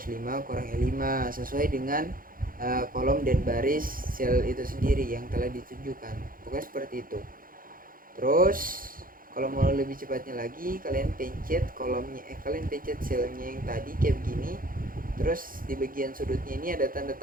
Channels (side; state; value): left; late; 0.41 ms